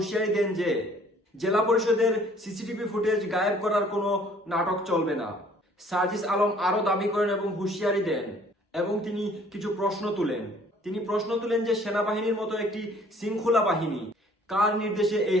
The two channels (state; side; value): normal; both; correlation 0.56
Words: দেন যে জেলা পরিষদের সিসিটিভি ফুটেজ গায়েব করার কোনো নাটক চলবে না। সার্জিস আলম আরো দাবি করেন এবং হুঁশিয়ারি দেন এবং তিনি কিছু প্রশ্ন তুলেন। তিনি প্রশ্ন তুলেন যে সেনাবাহিনীর মতো একটি শৃঙ্খলা বাহিনী কার নির্দেশে এই